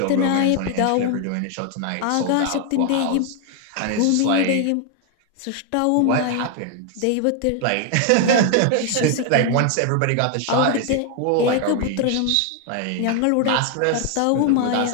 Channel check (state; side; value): different; both; correlation 0.00